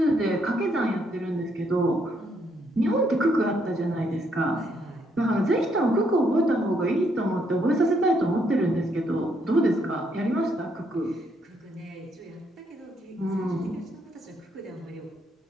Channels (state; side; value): normal; both; correlation 0.73